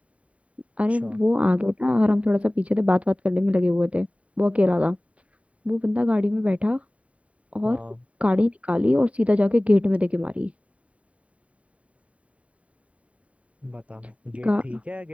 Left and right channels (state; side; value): late; left; 0.066 ms